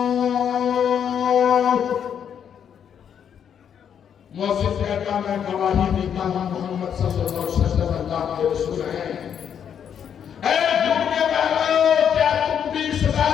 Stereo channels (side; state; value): right; quieter; 8.3 dB